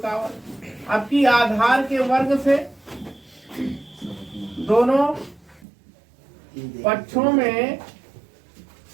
वर्ग। आपकी आधार के वर्ग से दोनों पक्षों में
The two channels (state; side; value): drops out; left; at 5.7 s